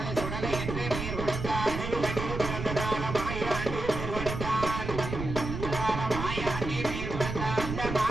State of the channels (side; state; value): right; noise; rumble, 5 dB below the sound